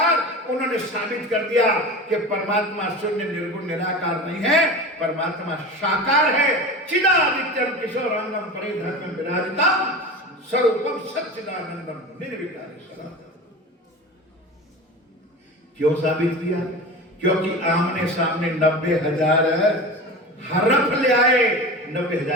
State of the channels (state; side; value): normal; both; correlation 0.31